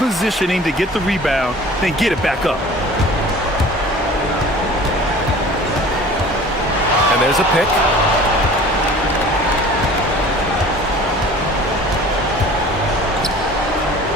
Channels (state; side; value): normal; both; correlation 0.44